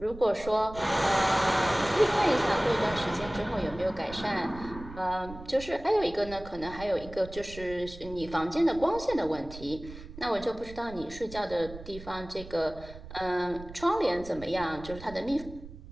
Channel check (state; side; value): noise; right; rumble, 15 dB below the sound